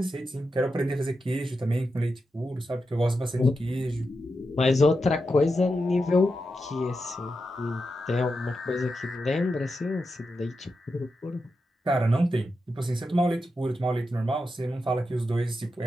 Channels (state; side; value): normal; both; correlation 0.88